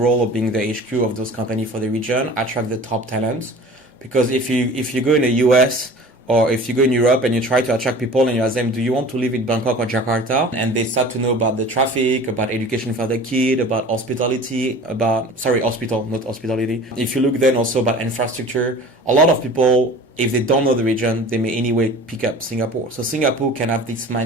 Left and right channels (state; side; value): normal; both; correlation 0.42